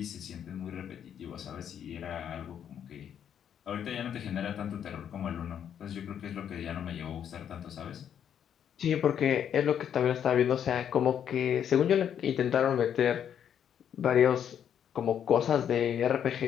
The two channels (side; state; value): right; quieter; 9.0 dB